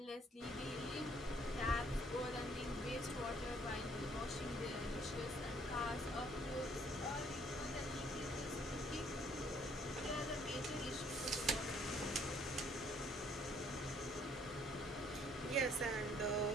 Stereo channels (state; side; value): normal; both; correlation 0.63